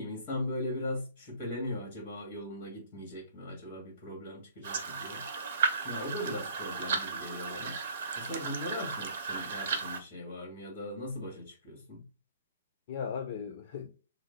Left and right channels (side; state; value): both; inverted; correlation -0.53